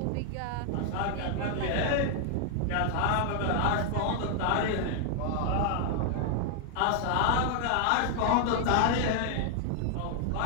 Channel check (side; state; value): both; different; correlation 0.00